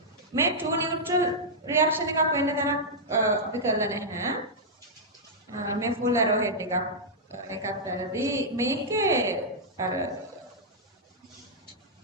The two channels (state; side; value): normal; both; correlation -0.08